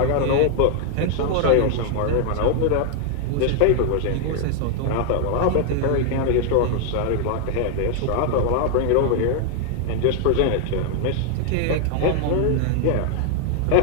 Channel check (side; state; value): both; different; correlation 0.00